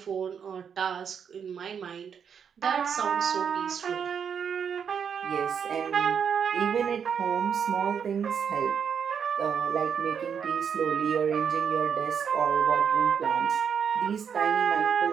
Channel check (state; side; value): quieter; left; 7.3 dB